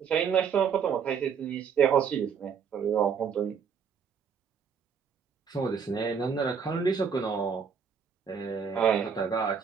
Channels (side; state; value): left; quieter; 6.6 dB